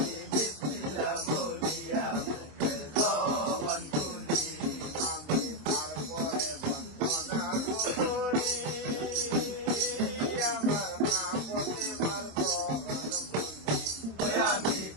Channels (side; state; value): left; late; 26 ms